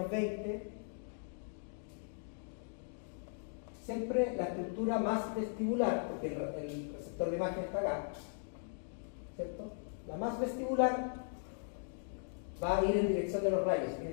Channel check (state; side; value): silent; right; digital silence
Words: 20, siempre la estructura más vestibular, porque el receptor de imagen está acá, ¿cierto? La más vestibular va a ir en dirección de los rayos, en